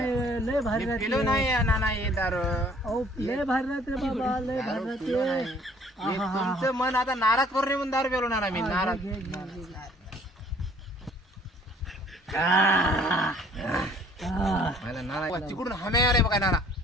लय भारी मी राहते. पिलो नाही ना ना हे दारू अहो लय भारी राहते बाबा लय दारू भारी पिलो राहते. नाही. मी तुमचं मन आता नाराज करून नाही म्हणून दारू पिलो ना मी नाराज. घे, घे, घे, घे. मला नाना तिकडून हमे आले बघा नाना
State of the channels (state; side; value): normal; both; correlation 0.57